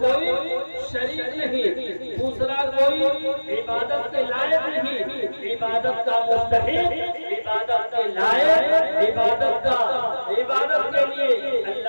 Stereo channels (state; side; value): inverted; both; correlation -1.00